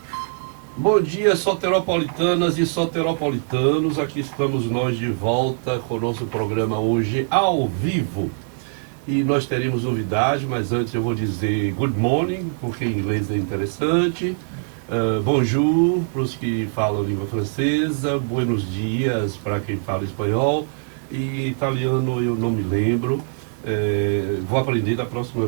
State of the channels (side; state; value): left; silent; digital silence